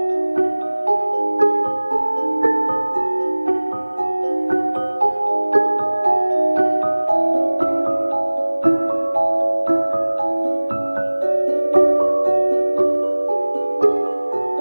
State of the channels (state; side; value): inverted; both; correlation -1.00